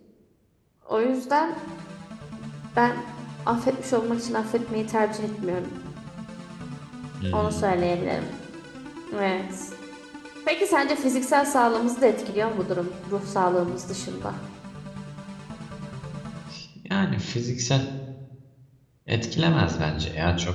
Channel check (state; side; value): identical; both; correlation 1.00